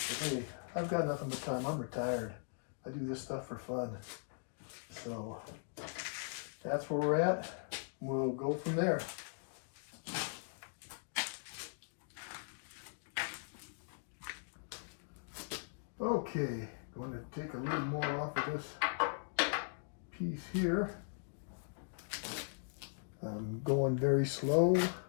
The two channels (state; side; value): silent; right; digital silence